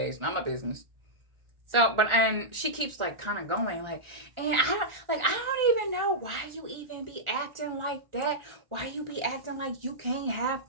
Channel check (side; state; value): left; late; 1.4 ms